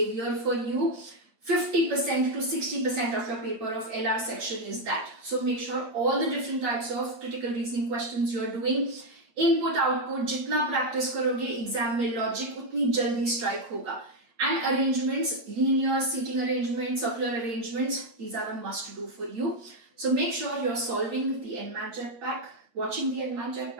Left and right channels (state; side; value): late; left; 8.6 ms